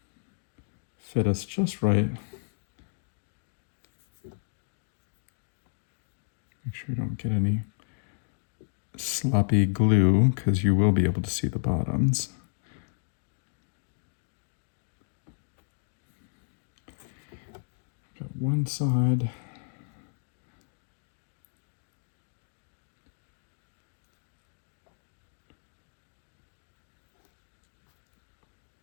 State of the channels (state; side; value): silent; right; digital silence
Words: fit us just right. Make sure you don't get any sloppy glue, because you will be able to see the bottoms. Got one side.